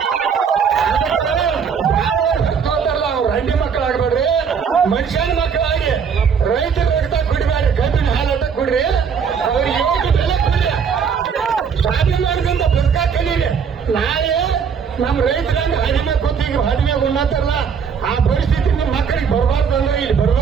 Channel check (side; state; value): left; quieter; 6.6 dB